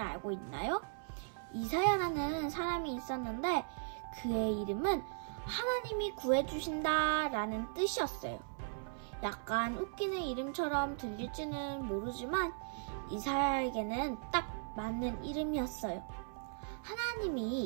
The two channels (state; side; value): silent; left; 53 dB below the other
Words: 있나요? 이사야라는 사람이 있었는데 그의 이름은 하나님이 구해주신다 라는 뜻이었어요. 약간 웃기는 이름처럼 들릴지는 모르지만 이사야에게는 딱 맞는 이름이었어요.